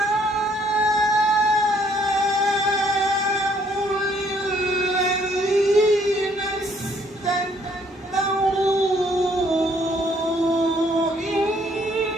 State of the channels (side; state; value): both; normal; correlation 0.65